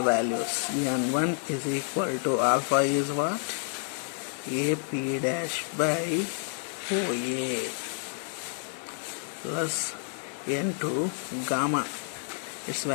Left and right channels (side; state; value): right; silent; 58 dB below the other